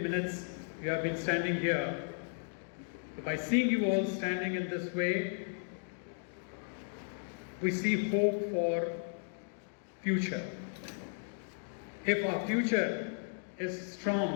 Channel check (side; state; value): right; silent; digital silence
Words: you have been standing here. So by seeing you all standing in this way, we see hope for future. If our future is